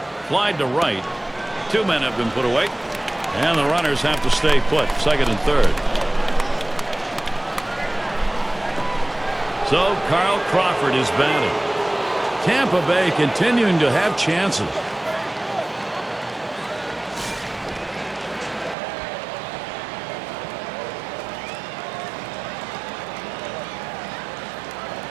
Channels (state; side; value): drops out; left; at 18.8 s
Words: Flied to right. 2 men have been put away. And the runners have to stay put, second and third. So Carl Crawford is batting. Tampa Bay continuing to have chances.